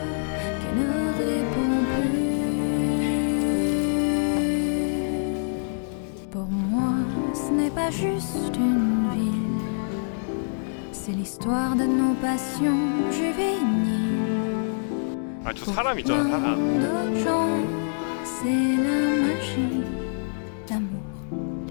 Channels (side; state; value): right; silent; digital silence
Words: qui ne réponds plus. Pour moi, ce n'est pas juste une ville, c'est l'histoire de nos passions juvéniles. 아, 저 사람 있잖아, 사람. D'autres gens, c'est la magie, l'amour,